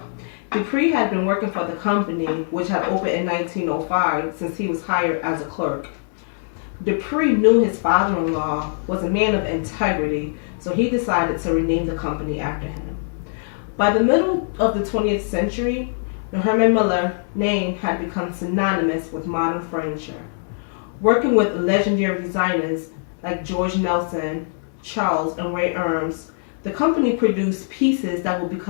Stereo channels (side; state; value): right; silent; 64 dB below the other